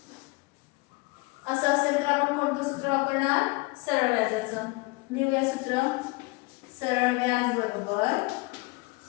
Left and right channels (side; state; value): right; quieter; 25.8 dB